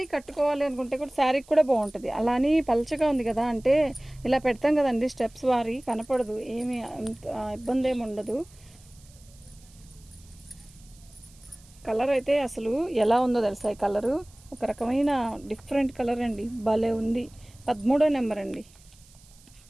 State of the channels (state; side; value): noise; right; hiss, 26 dB below the sound